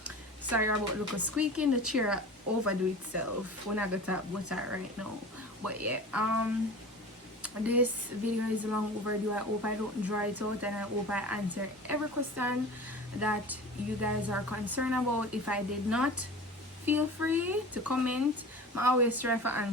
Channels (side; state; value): both; normal; correlation 0.36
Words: Sorry about look squeaking, the chair overdo itself when I got up with that right now. But yeah, this video is long overdue. I hope I don't draw it out, and I hope I answer every question that you guys are concerned about. If I did not, feel free to comment. I always try for